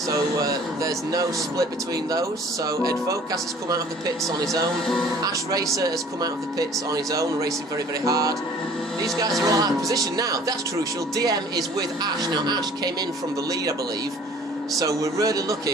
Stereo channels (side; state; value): both; normal; correlation 0.51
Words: there's no split between those. So Advocaat has come out of the pits on his own. Ash Racer has come out of the pits on his own, racing very, very hard. These guys are all out of position now. That's crucial. DM is with Ash. Now Ash came in from the lead, I believe. So we're really